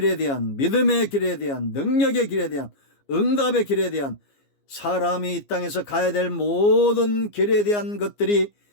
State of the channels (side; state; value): right; late; 15 ms